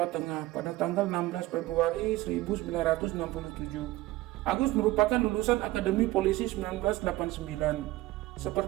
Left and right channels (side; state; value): left; quieter; 17.7 dB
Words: Tengah pada tanggal 16 Februari 1967. Agus merupakan lulusan Akademi Polisi 1989.